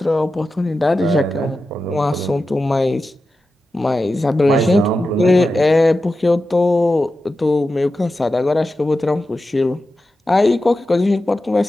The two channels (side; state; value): both; normal; correlation 0.92